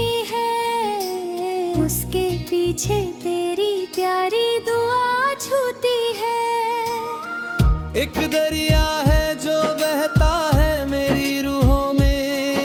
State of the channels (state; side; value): identical; both; correlation 1.00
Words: है, उसके पीछे तेरी प्यारी दुआ छूती है। एक दरिया है जो बहता है मेरी रूहों